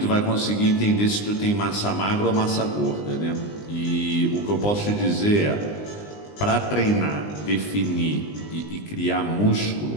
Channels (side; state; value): right; late; 20 ms